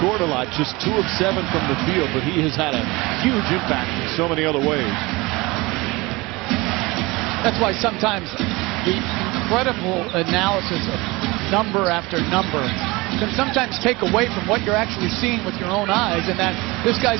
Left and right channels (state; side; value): quieter; left; 23.1 dB